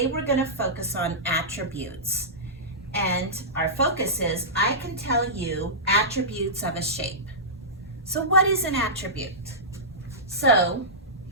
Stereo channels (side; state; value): both; normal; correlation -0.16